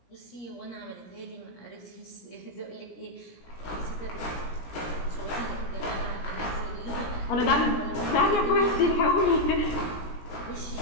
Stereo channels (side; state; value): right; late; 17 ms